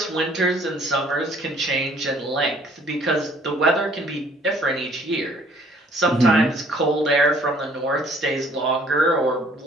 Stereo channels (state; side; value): normal; both; correlation 0.59